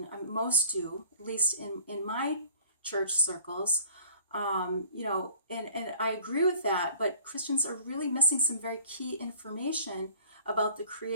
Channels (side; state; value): both; inverted; correlation -0.50